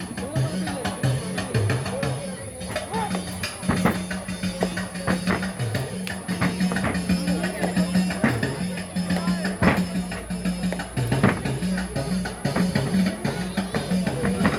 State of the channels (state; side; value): identical; both; correlation 1.00